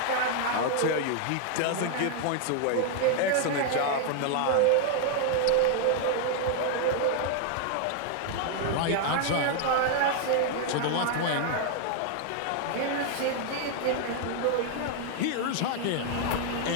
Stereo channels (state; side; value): different; both; correlation 0.00